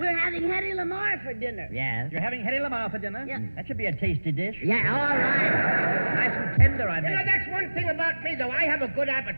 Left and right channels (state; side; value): inverted; both; correlation -1.00